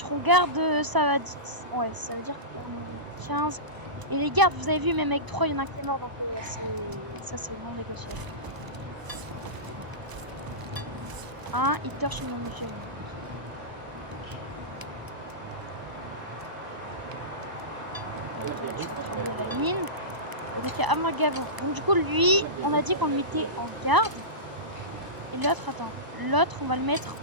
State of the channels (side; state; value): left; late; 1.0 ms